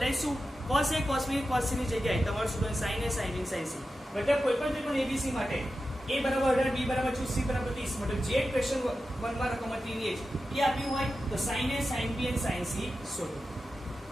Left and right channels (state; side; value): normal; both; correlation 0.92